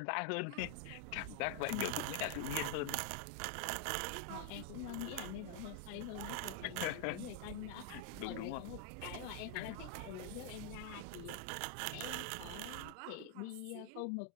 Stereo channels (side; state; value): both; different; correlation 0.00